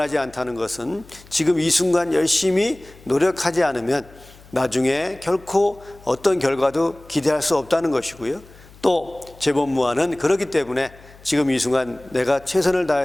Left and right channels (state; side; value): noise; left; hum, 23 dB below the sound